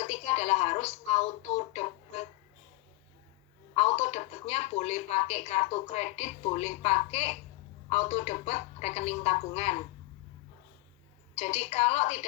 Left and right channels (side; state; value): right; quieter; 20.5 dB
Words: ketiga adalah harus auto debit. Auto debitnya boleh pakai kartu kredit, boleh pakai auto debit rekening tabungan. Jadi kalau